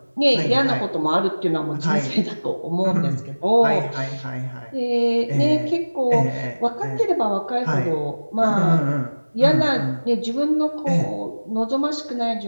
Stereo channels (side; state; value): both; inverted; correlation -1.00